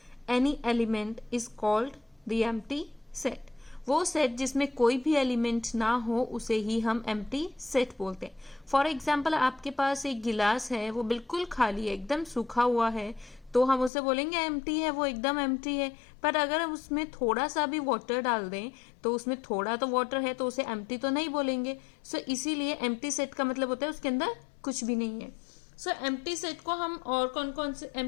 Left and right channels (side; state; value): right; drops out; at 13.9 s